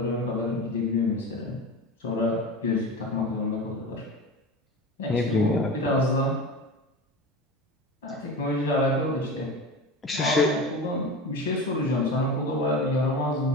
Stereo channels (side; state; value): both; normal; correlation 0.29